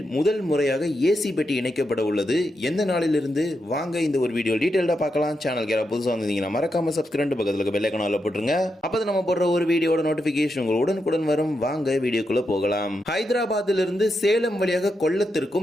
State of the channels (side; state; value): both; normal; correlation 0.85